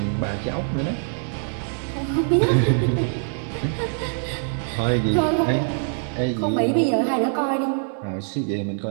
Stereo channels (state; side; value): silent; left; digital silence